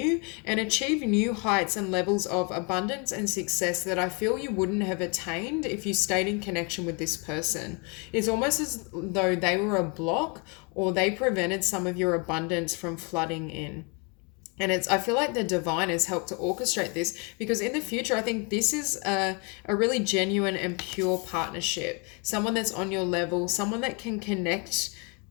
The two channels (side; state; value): right; quieter; 33.2 dB